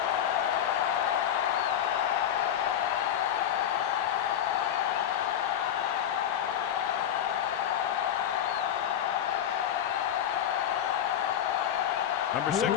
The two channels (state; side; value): quieter; right; 10.0 dB